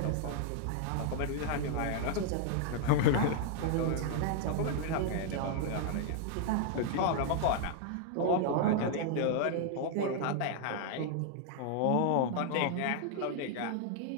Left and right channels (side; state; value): both; different; correlation 0.00